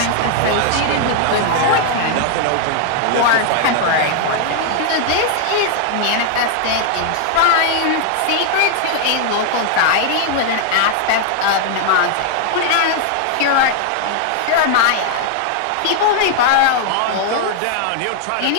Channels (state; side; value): different; both; correlation 0.00